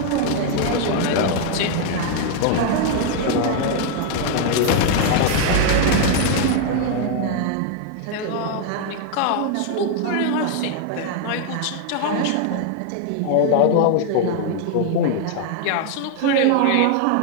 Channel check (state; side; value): different; both; correlation 0.00